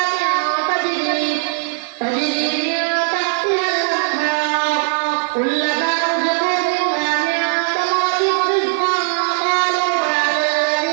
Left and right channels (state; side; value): silent; left; digital silence